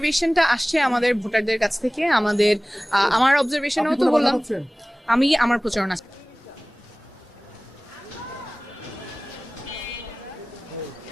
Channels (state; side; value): normal; both; correlation 0.98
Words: আসছে আমাদের ভোটারদের কাছ থেকে। আমার অবজারভেশনও তো বললাম, আমি আমার প্রচারণা।